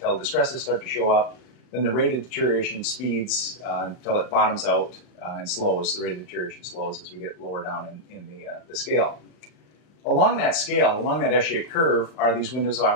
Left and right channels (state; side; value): late; right; 39 ms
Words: distresses start to show up. Then the rate of deterioration speeds until it bottoms out and slows. The rate of deterioration slows as we get lower down in the scale. Along that scale, along that S-shaped curve, are these windows of